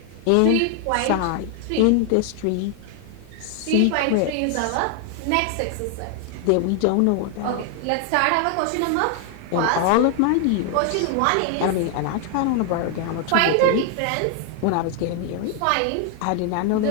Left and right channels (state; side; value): different; both; correlation 0.00